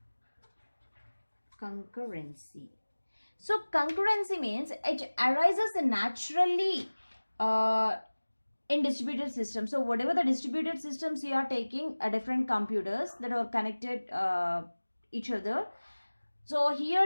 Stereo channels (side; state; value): both; inverted; correlation -1.00